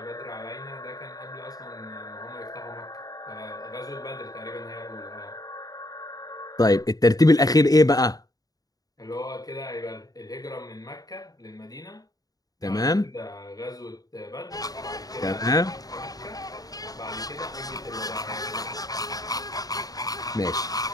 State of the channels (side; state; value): right; late; 0.18 ms